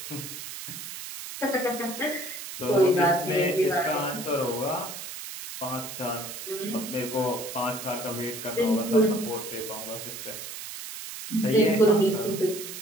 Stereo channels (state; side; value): noise; right; hiss, 9 dB below the sound